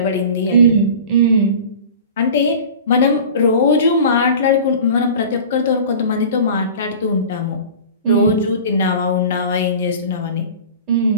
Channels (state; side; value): inverted; both; correlation -0.38